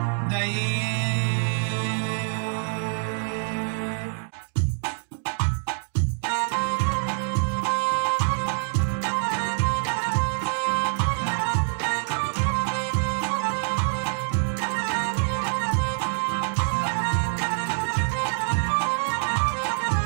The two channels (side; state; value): left; silent; digital silence